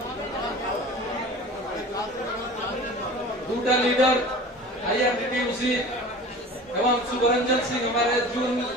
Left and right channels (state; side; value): normal; both; correlation 0.39